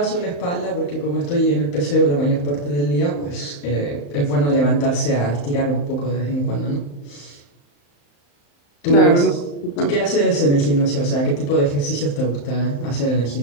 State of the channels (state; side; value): late; right; 35 ms